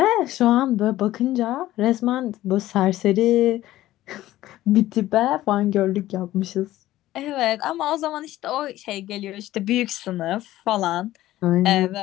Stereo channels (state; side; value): quieter; right; 15.1 dB